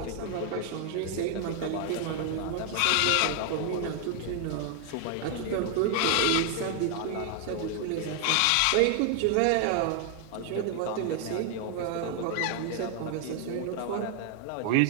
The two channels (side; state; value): both; different; correlation 0.00